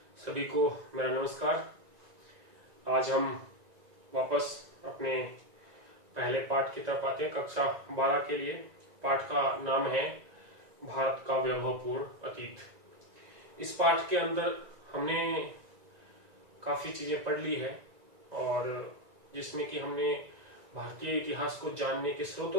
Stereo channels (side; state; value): left; late; 1.9 ms